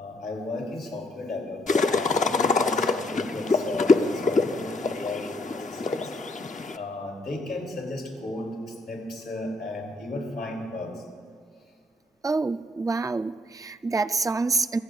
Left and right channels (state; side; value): normal; both; correlation 0.70